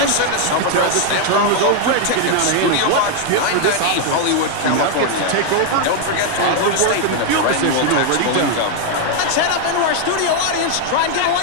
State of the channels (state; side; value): different; both; correlation 0.00